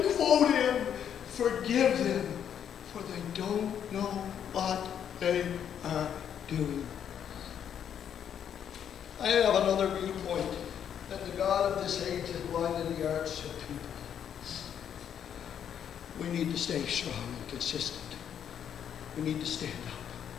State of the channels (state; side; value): quieter; right; 8.9 dB